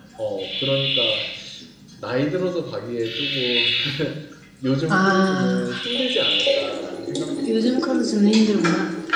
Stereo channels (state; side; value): identical; both; correlation 1.00